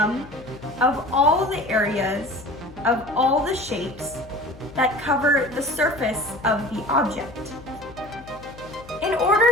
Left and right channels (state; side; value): noise; left; hum, 19 dB below the sound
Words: of all the areas of all the shapes that cover the surface of the object. In